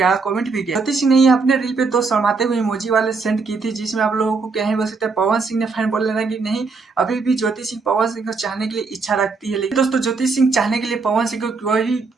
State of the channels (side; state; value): left; quieter; 4.4 dB